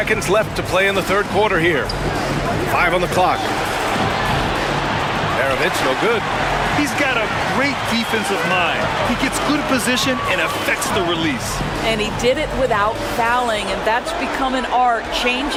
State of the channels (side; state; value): both; identical; correlation 1.00